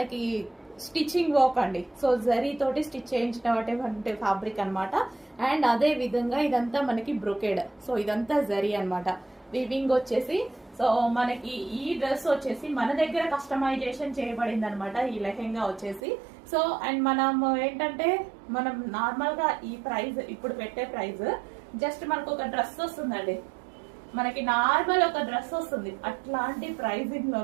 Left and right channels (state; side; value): drops out; left; at 16.0 s